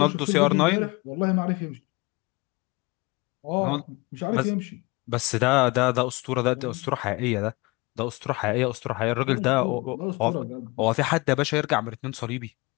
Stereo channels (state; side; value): quieter; right; 25.2 dB